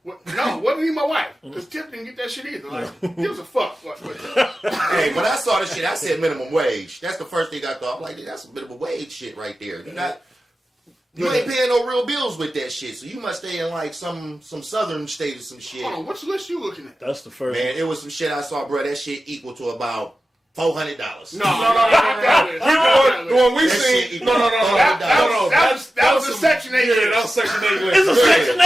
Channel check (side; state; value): both; normal; correlation 0.93